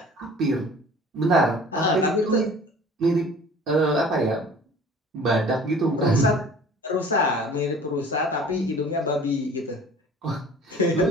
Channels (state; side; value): normal; both; correlation 0.47